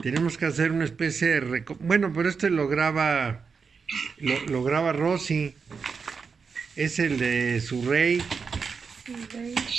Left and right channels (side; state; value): left; quieter; 5.4 dB